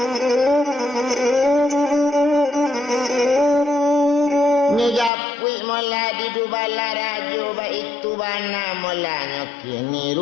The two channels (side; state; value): right; drops out; at 5.1 s